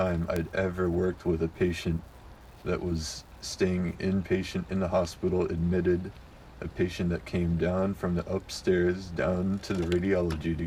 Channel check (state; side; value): identical; both; correlation 1.00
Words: I'd ever worked with a patient that was staying inpatient in the hospital, admitted, a patient that came down from the upstairs down to the radiology to